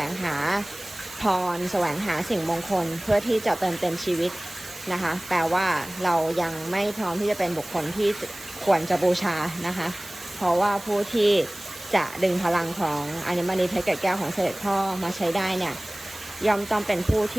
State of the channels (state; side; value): noise; right; hiss, 16 dB below the sound